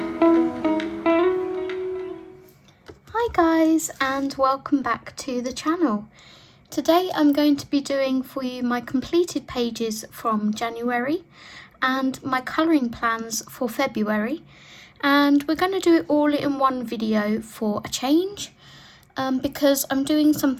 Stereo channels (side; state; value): both; identical; correlation 1.00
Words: guys, and welcome back to the channel. Today I'm going to be doing for you my completed pages from January and my colouring plans for February, and we're going to do it all in one video for a change, because I'm doing